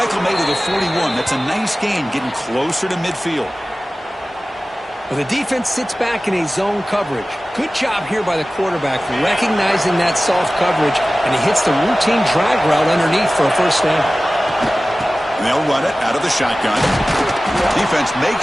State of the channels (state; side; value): normal; both; correlation 0.97